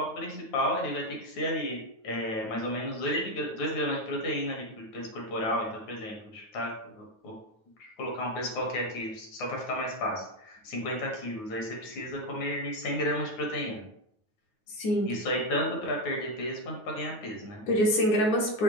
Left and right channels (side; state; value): right; late; 9.3 ms